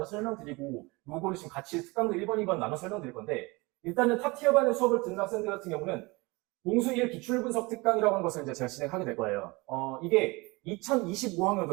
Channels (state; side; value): quieter; left; 24.8 dB